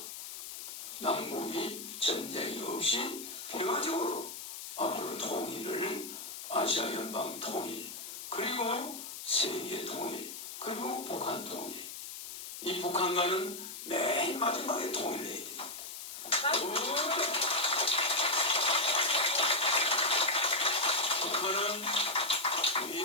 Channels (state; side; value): noise; left; hiss, 9 dB below the sound